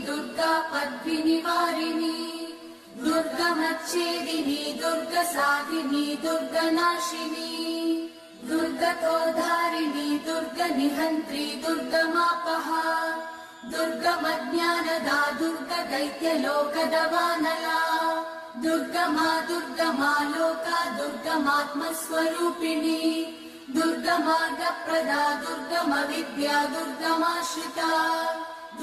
दुर्गा पद्मिनिवारिणी दुर्गमच्छेदिनी दुर्गसाधिनी दुर्गनाशिनी दुर्गतोधारिणी दुर्गनिहन्त्री दुर्गमापहा दुर्गमज्ञानदा दुर्गदैत्यलोकदवानला दुर्गमा दुर्गमा लोका दुर्गमात्मस्वरूपिणी दुर्गमार्गप्रदा दुर्गमविद्या दुर्गमाश्रिता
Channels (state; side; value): identical; both; correlation 1.00